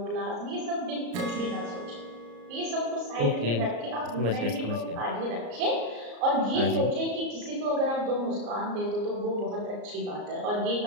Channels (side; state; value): left; late; 34 ms